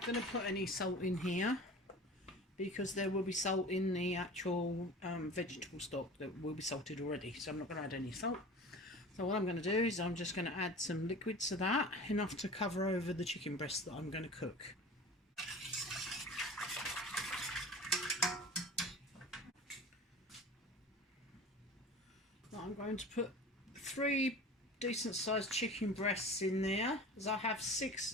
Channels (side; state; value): both; normal; correlation 0.38